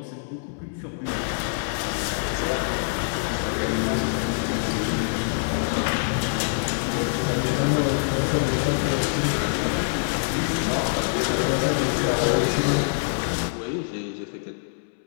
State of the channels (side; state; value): right; silent; 62 dB below the other